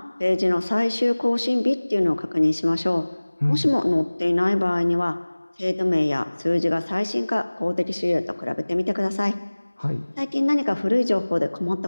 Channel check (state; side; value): inverted; both; correlation -1.00